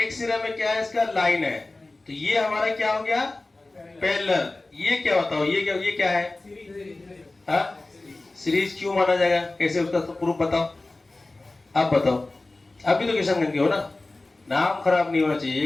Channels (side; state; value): right; quieter; 3.1 dB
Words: सिरा में क्या है इसका लाइन है। तो ये हमारा क्या हो गया पैरेलल। ये क्या बताओ, ये क्या है, हाँ सीरीज क्यों माना जाएगा, कैसे उसका तो प्रूफ बताओ, आप बताओ। आप भी तो किशनगंज के हो ना, नाम खराब नहीं होना चाहिए,